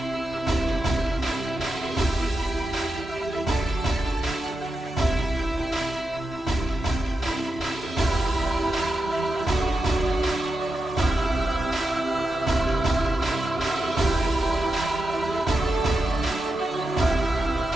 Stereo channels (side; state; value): both; normal; correlation 0.88